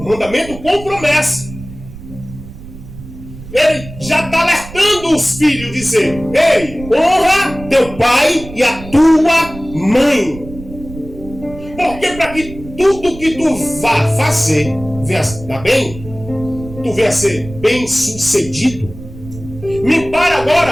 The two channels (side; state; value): right; noise; rumble, 14 dB below the sound